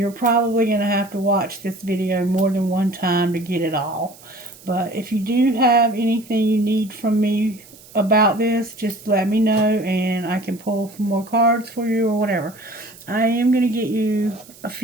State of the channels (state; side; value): noise; right; hiss, 22 dB below the sound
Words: probably going to have to watch this video more than one time to get it all. But if you do have anything you need from me about this, just let me know and I can pull some more cards for you or whatever. I am going to get you a